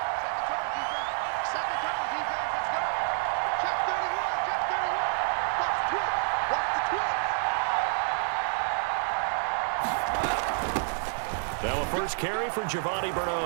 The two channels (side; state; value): left; silent; digital silence